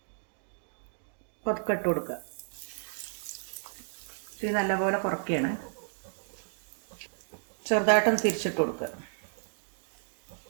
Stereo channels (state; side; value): silent; left; digital silence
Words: പതുക്കെ ഇട്ട് കൊടുക്കുക. ഇത് നല്ലപോലെ കുറയ്ക്കുകയാണ്. ചെറുതായിട്ടൊന്ന് തിരിച്ചിട്ട് കൊടുക്കുക.